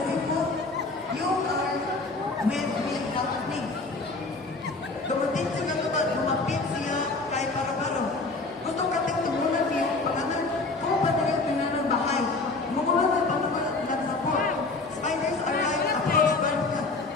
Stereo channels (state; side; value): quieter; right; 3.5 dB